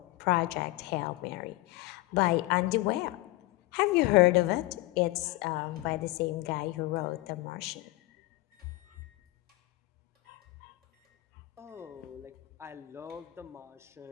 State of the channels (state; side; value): quieter; right; 19.3 dB